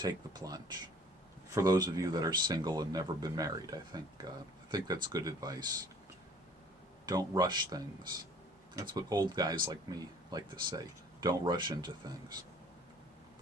the plunge. For those of you that are single and never been married, I think that's good advice. Don't rush things. That's what old guys like me like to say. Don't rush into things.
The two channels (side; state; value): both; normal; correlation 0.53